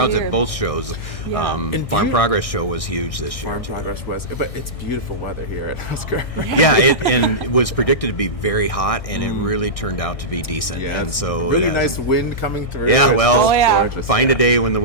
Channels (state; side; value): late; right; 1.6 ms